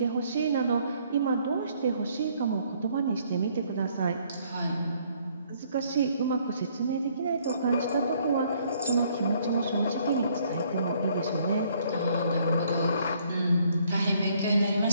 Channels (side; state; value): both; inverted; correlation -0.65